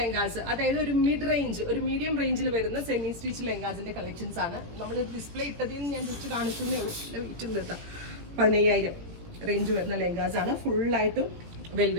അതായത് ഒരു മീഡിയം റേഞ്ചിൽ വരുന്ന സെമി സ്റ്റിച്ച് ലെഹങ്കാസിന്റെ കളക്ഷൻസ് ആണ് നമ്മൾ ഡിസ്പ്ലേ ഇട്ടതിൽ നിന്ന് ഞാൻ ജസ്റ്റ് കാണിക്കുന്നേ ഉള്ളൂ. നല്ല വെയിറ്റ് ഉണ്ട് കേട്ടോ. 15,000 റേഞ്ച് വരുന്ന ലെഹങ്കാസ് ആണ്. ഫുള്ളായിട്ടും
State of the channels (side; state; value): left; late; 17 ms